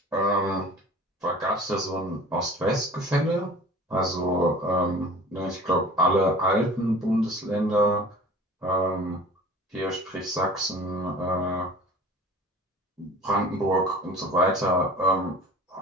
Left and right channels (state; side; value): normal; both; correlation 0.43